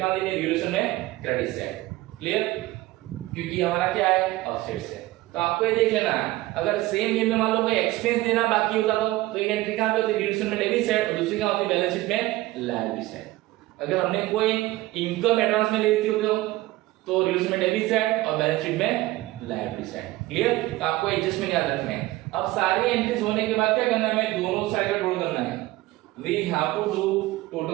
देनी है, रिलेशन में क्रेडिट साइड। क्लियर, क्योंकि हमारा क्या है, असेट्स है। तो आपको ये देख लेना है, अगर सेम ये में मान लो कोई एक्सपेंस देना बाकी होता तो एक एंट्री कहां पे होती, रिलेशन में डेबिट साइड, और दूसरी कहां होती, बैलेंस शीट में लायबिलिटी साइड। अगर हमने कोई इनकम एडवांस में ले ली होती तो रिलेशन में डेबिट साइड और बैलेंस शीट में लायबिलिटी साइड। क्लियर, तो आपको एडजस्टमेंट याद रखना है। अब सारी एंट्रीज होने के बाद क्या करना है, हमें दोनों साइड का टोटल करना है, we have to do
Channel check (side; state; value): left; quieter; 18.2 dB